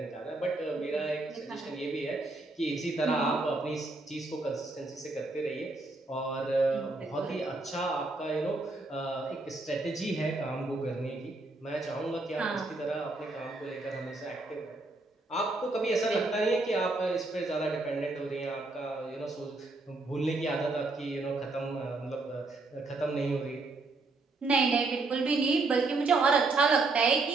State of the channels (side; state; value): left; quieter; 3.3 dB